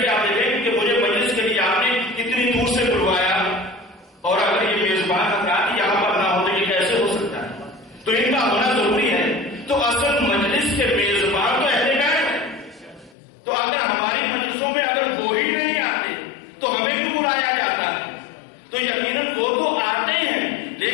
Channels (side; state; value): right; drops out; at 13.2 s